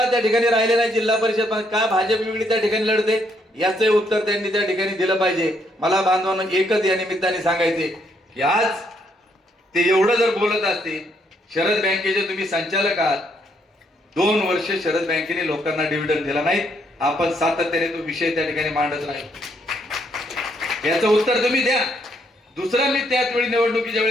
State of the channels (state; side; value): normal; both; correlation 0.73